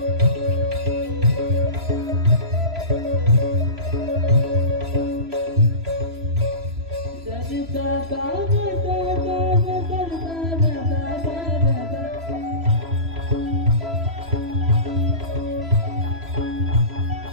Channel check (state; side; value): late; left; 3.0 ms